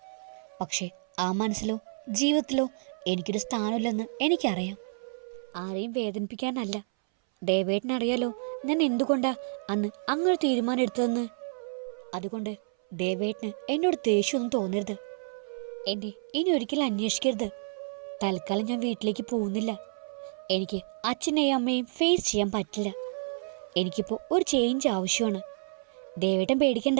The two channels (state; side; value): silent; left; 58 dB below the other